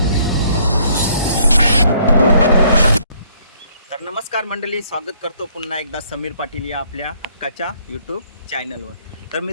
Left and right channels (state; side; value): inverted; both; correlation -0.64